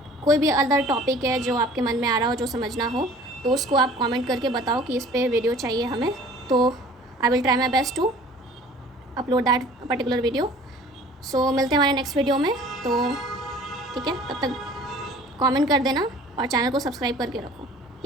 कोई भी अदर टॉपिक है जो आपके मन में आ रहा हो, जो समझना हो, तो उसको आप कमेंट करके बताओ कि इस पे वीडियो चाहिए हमें, तो I will try my best to upload that particular video. So मिलते हैं हमारे नेक्स्ट वीडियो में। तो ठीक है, तब तक कमेंट कर देना और चैनल को सब्सक्राइब करके रखो।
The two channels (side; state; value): both; normal; correlation 0.48